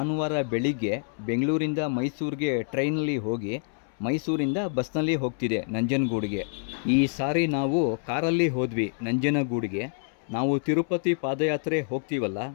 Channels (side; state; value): right; silent; 60 dB below the other